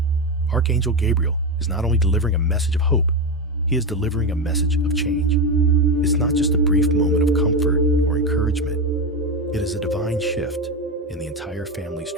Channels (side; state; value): both; normal; correlation 0.14